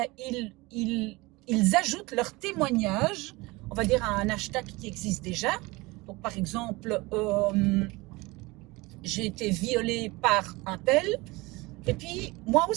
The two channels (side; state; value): left; quieter; 22.8 dB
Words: ils ajoutent leur témoignage, on va dire à un hashtag qui existe déjà. Donc, par exemple, j'ai été violée par un tel, et puis moi